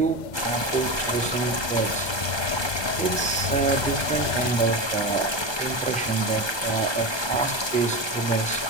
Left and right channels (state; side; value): late; right; 1.2 ms